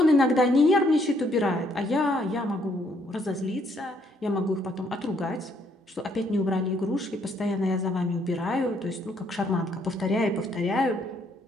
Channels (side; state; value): both; normal; correlation 0.69